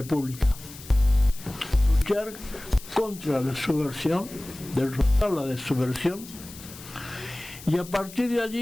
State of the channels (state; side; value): noise; left; hiss, 17 dB below the sound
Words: luchar contra la subversión, derrotar la subversión, y a partir de